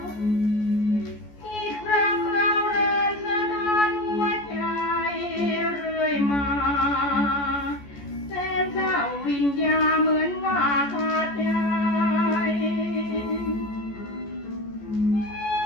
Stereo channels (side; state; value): right; late; 14 ms